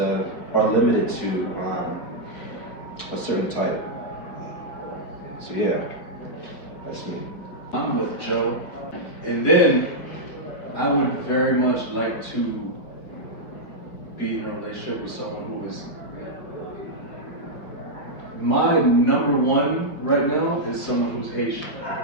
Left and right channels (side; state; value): right; late; 5.0 ms